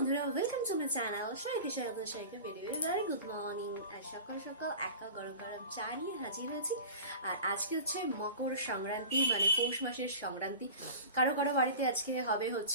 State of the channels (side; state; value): both; inverted; correlation -0.35